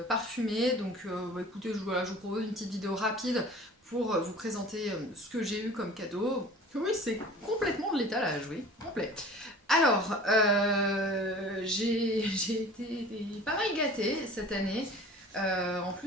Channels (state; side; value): normal; both; correlation 0.43